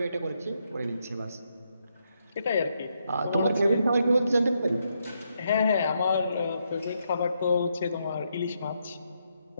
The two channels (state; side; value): inverted; both; correlation -0.79